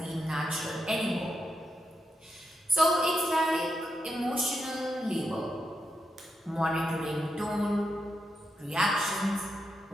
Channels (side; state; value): both; normal; correlation 0.85